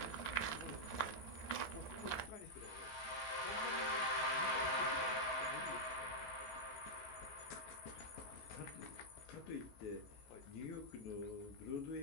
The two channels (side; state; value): right; late; 14 ms